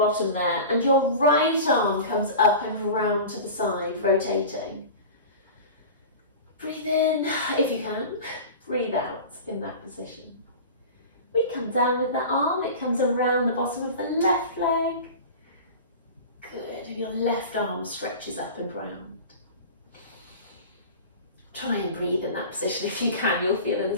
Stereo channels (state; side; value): inverted; both; correlation -0.34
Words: there, and your right arm comes up and round to the side, rotating. Breathe in if you can, breathe out in that position. We come down with that arm, it comes around the bottom of the left leg. Good, and your left arm stretches up and round. Try and breathe in that position if you can. You'll feel a